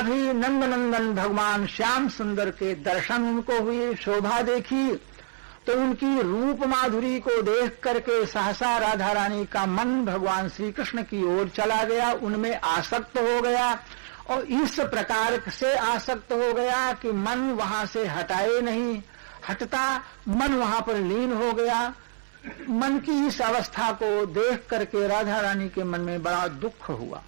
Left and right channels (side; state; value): left; silent; 60 dB below the other